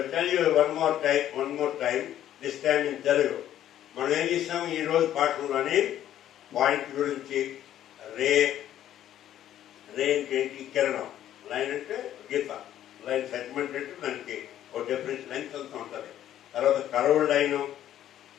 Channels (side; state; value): right; quieter; 11.7 dB